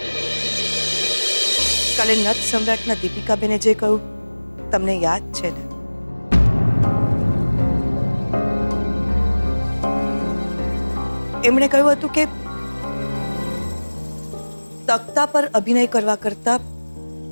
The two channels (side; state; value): both; inverted; correlation -1.00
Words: કાલે નત સમ્રાટના દીપિકાબેને જે કહ્યું તમને યાદ છે ને? એમણે કહ્યું હતું કે તખ્તા પર અભિનય કરવા કરતા